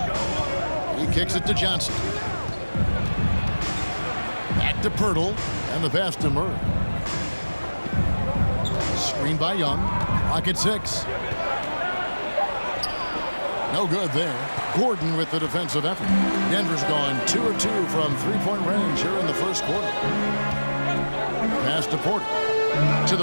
He kicks it to Johnson. Back to Pirtle, and the pass to Murray. Screen by Young. Clock at 6. No good there. Gordon with the defensive effort. Denver's gone 2 of 2 from three-point range here in the first quarter. Pass to Porter. To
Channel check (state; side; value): inverted; both; correlation -1.00